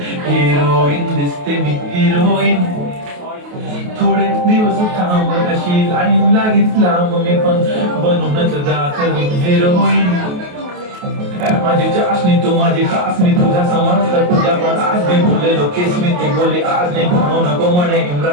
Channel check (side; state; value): left; late; 28 ms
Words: हिरोईन दिसते मी हिरोईन थोडे दिवस थांब अशी लाईन लागीत लांब मी पण बनूनच दाखवी हिरोईन माझी चाशनी तू माझी खासनी तुझा समजता तुझ्या पण आज मी बोललेलो केस मी ती बोली आज नाही म्हणू नको म्हणे